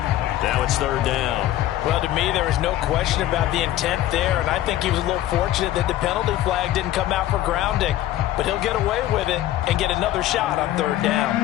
Now it's 3rd down. Well, to me, there is no question about the intent there, and I think he was a little fortunate that the penalty flag didn't come out for grounding. But he'll get away with it and get another shot on 3rd down.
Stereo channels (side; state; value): right; quieter; 13.8 dB